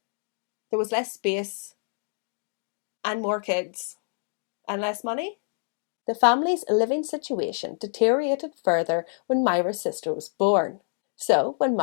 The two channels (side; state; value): right; silent; 60 dB below the other